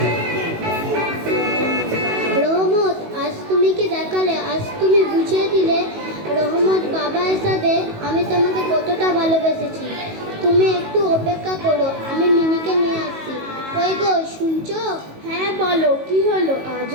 রহমত, আজ তুমি কি দেখালে, আজ তুমি বুঝিয়ে দিলে রহমত বাবা হিসাবে আমি তোমাকে কতটা ভালোবেসেছি। তুমি একটু অপেক্ষা করো, আমি মিনিকে নিয়ে আসছি। ওই গো, শুনছো? হ্যাঁ বলো, কি হলো?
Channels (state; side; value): late; left; 19 ms